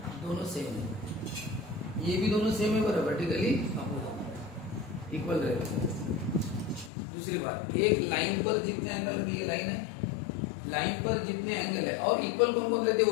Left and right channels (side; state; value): right; drops out; at 6.9 s